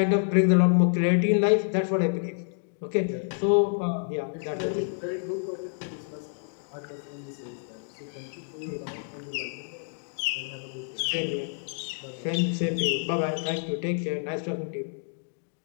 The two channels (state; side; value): silent; right; digital silence